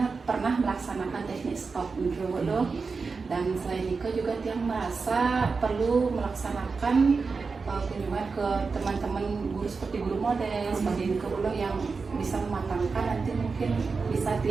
pernah melaksanakan teknik stop gitu loh. Dan selain itu juga yang merasa perlu melaksanakan kunjungan ke teman-teman guru seperti guru model seperti itu loh, yang bisa mematangkan nanti mungkin bisa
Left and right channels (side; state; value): left; quieter; 4.6 dB